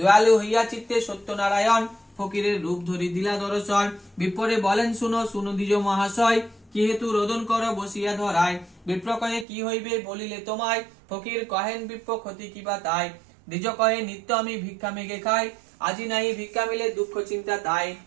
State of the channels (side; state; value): left; drops out; at 9.5 s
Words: হইয়া চিত্তে সত্যনারায়ণ, ফকিরের রূপ ধরি দিলা দর্শন। বিপ্রে বলেন শুনো শুনো দ্বিজ মহাশয়, কি হেতু রোদন কর বসিয়া ধরায়। বিপ্র কহে কি হইবে বলিলে তোমায়, ফকির কহেন বিপ্র ক্ষতি কিবা তাই। দ্বিজ কহে নিত্য আমি ভিক্ষা মেঘে খাই, আজি নাই ভিক্ষা মিলে দুঃখ চিন্তা তাই।